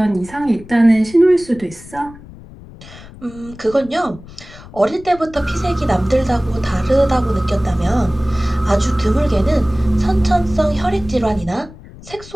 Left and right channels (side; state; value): left; noise; rumble, 19 dB below the sound